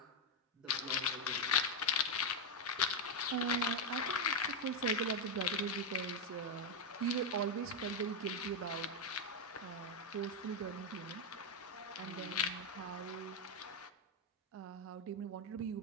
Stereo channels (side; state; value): both; normal; correlation 0.02